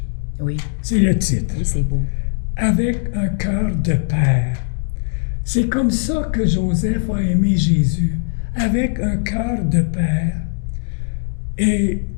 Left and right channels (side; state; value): right; silent; 66 dB below the other